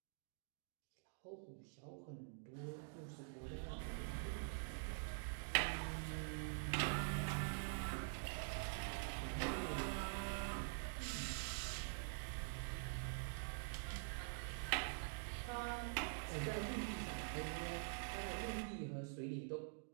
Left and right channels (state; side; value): silent; left; digital silence